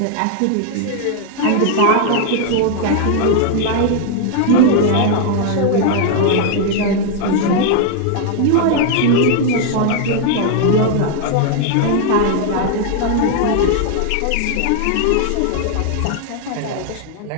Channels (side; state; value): both; different; correlation 0.00